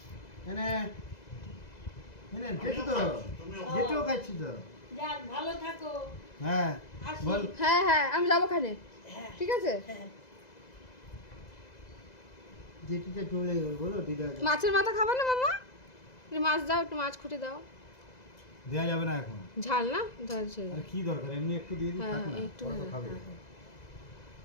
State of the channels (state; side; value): late; right; 2.0 ms